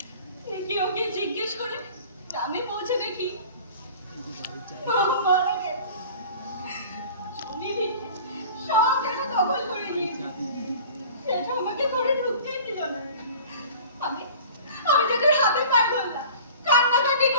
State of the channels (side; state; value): both; inverted; correlation -0.43